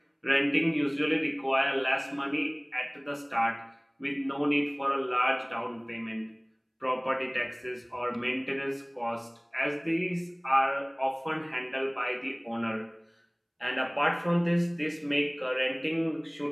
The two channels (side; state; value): both; identical; correlation 1.00